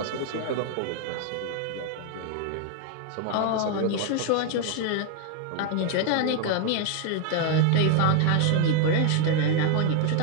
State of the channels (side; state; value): both; different; correlation 0.01